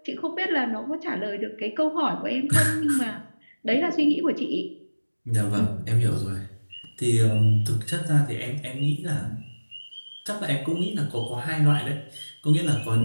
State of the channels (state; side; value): inverted; both; correlation -1.00